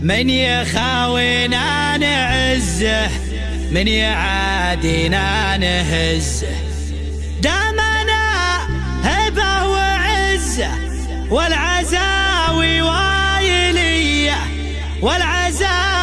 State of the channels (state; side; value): identical; both; correlation 1.00